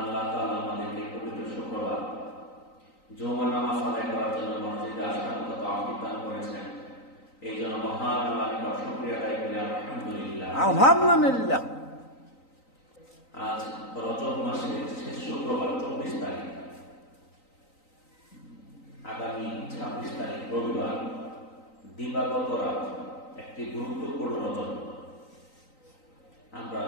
আল্লাহ তাআলা আমাদেরকে পবিত্র শুক্রবার জুমার নামাজ আদায় করার জন্য মসজিদে আসার মতো তৌফিক দান করেছেন। এই জন্য মহান আল্লাহর নিকট শুকরিয়া আদায় করি আলহামদুলিল্লাহ। আলহামদুলিল্লাহ। আজ রজব মাসের শেষ শুক্রবার 24 তারিখ, আগামী 26 তারিখ রবিবার, দিবাগত রাত, একটি গুরুত্বপূর্ণ রজব। আমরা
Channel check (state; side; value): late; right; 3.9 ms